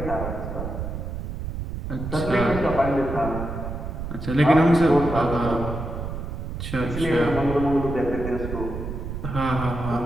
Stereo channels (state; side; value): noise; right; rumble, 6 dB below the sound